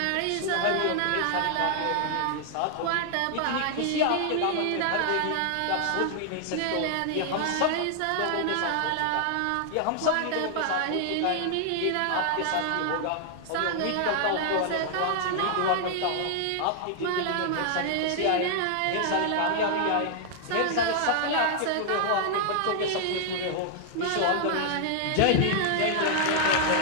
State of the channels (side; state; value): both; different; correlation 0.00